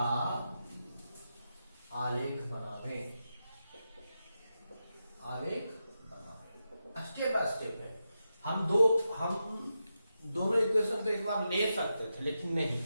आलेख बनावे, स्टेप बाय स्टेप है। हम दोनों इक्वेशन को एक बार ले सकते थे, लेकिन नहीं,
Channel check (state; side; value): inverted; both; correlation -0.89